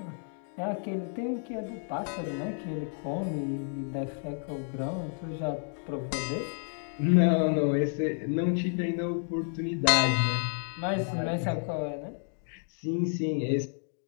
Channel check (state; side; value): silent; right; 56 dB below the other